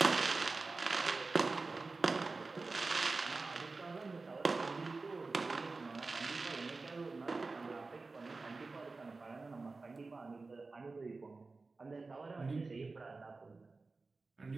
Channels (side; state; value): left; quieter; 3.8 dB